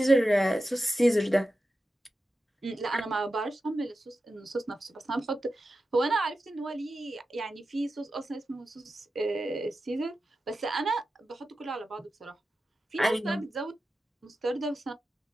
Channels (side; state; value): both; normal; correlation 0.91